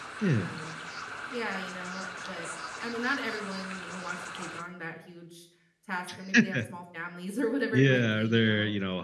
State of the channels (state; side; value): identical; both; correlation 1.00